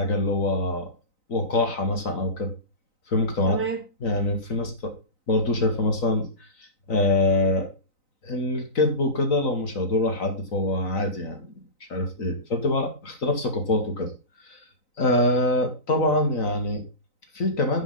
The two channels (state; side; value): late; right; 3.9 ms